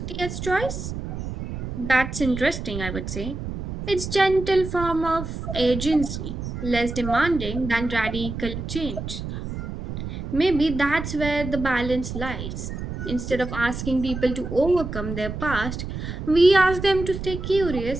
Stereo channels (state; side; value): noise; right; rumble, 6 dB below the sound